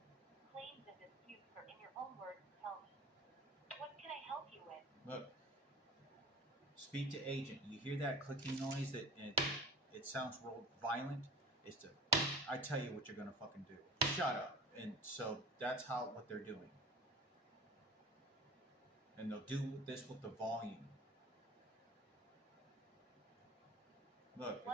claims and disputes, or in your own words, tell me. What can I help you with? Look. Speak to agent. You hear that clicking noise that it sounds real violent? I tell you what you're gonna fucking do. Shut up. And so that's what they're doing. And they'll do this with the volume. Look,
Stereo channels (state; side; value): normal; both; correlation 0.40